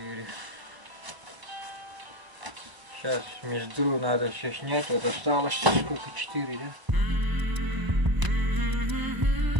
Сейчас мездру надо все снять. Вот осталось сколько, 4, да?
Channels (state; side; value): late; left; 1.0 ms